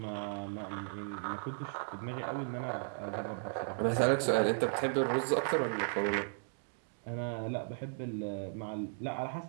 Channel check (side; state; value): left; silent; digital silence